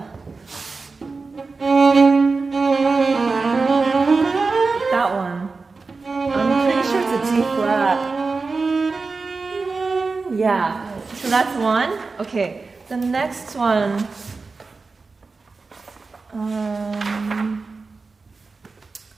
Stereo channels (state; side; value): quieter; left; 4.1 dB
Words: That one. I'm pretty sure it's a G flat. Yeah. So that's one. Okay. The next one. Where